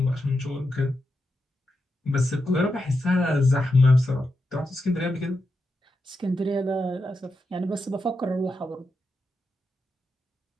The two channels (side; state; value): both; normal; correlation 0.87